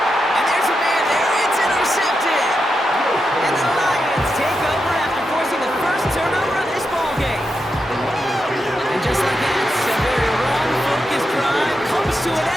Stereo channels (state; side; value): normal; both; correlation 0.86